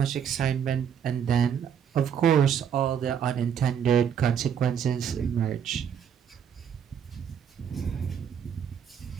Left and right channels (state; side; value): quieter; left; 8.2 dB